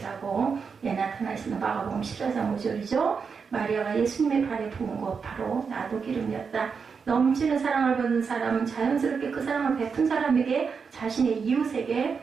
나타나 있습니다. 마가복음 14장 5절이죠. 마리아가 예수님의 발에 부은 것 바로 나도 기름이었다. 넘치는 사랑을 받은 사람은 자연스럽게 그 사랑을 베푼 사람에게 자신의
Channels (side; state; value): left; quieter; 5.7 dB